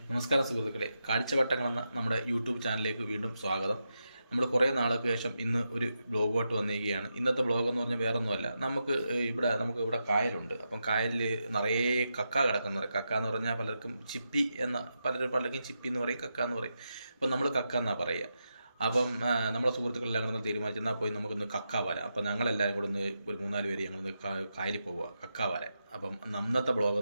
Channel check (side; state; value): both; inverted; correlation -0.86